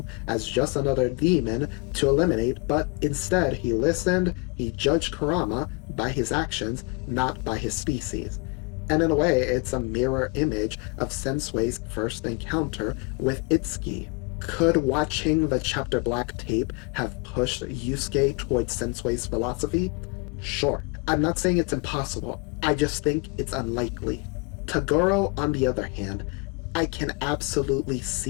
as just another demon to eliminate, but instead he listened, he judged Kurama by his actions, not by his species. And in a way, it's a mirror image of Sensui's first encounter with Itsuki. Could watching the Chapter Black tape have pushed Yusuke towards Sensui's philosophy? Sure. I'm not saying it's impossible, I just think it's unlikely. Toguro, on the other hand, I can absolutely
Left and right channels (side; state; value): right; quieter; 29.2 dB